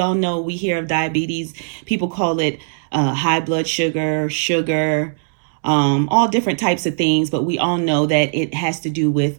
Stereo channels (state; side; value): silent; left; 67 dB below the other